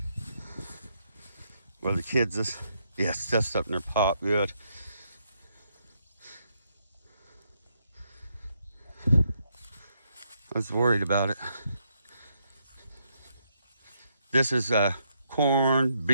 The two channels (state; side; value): inverted; both; correlation -0.77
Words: Where the kids is. Yeah, stuff's up in their pop, good. I was worried about it. This is corn,